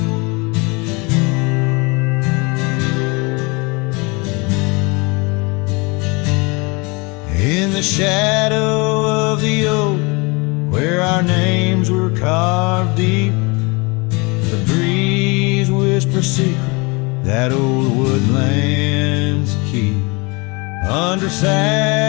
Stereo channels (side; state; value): right; quieter; 28.0 dB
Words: In the shadow of the oak, where our names were carved deep, the breeze whispers secret that old woodlands keep. Under